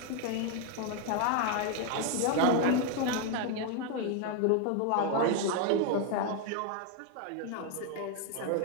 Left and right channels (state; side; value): different; both; correlation 0.01